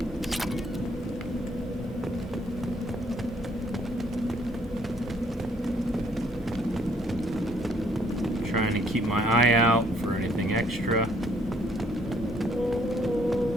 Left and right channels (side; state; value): both; normal; correlation 0.65